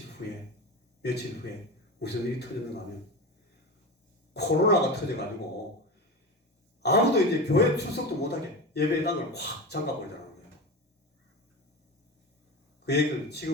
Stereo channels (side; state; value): both; normal; correlation 0.25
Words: 후에 무슨 일이 터졌는가 하면 코로나가 터져가지고 아무도 이제 교회 출석도 못하게 예배당을 확 잠가버리더라는 거예요. 그 얘기를